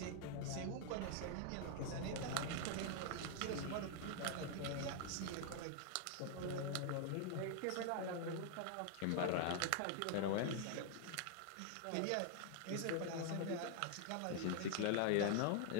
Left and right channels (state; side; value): different; both; correlation 0.00